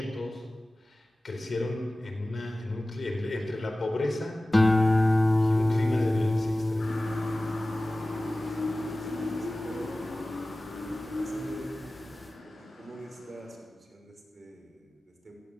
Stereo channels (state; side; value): normal; both; correlation 0.97